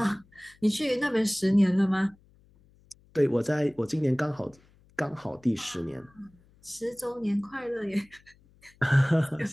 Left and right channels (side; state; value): left; noise; hum, 30 dB below the sound